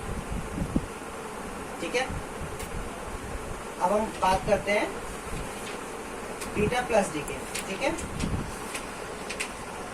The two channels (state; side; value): identical; both; correlation 1.00